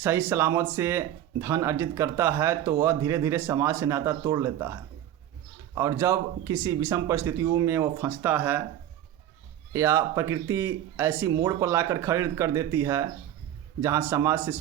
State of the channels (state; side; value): quieter; left; 11.6 dB